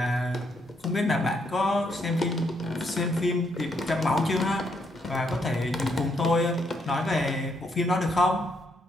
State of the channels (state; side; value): normal; both; correlation 0.75